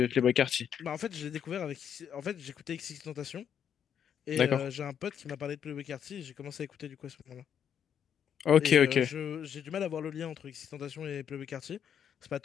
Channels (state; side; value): quieter; right; 8.5 dB